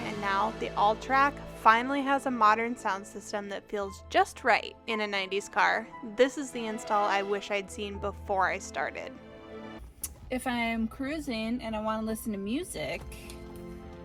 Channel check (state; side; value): identical; both; correlation 1.00